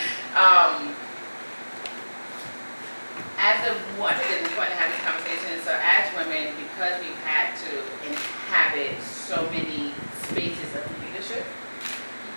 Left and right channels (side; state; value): both; inverted; correlation -1.00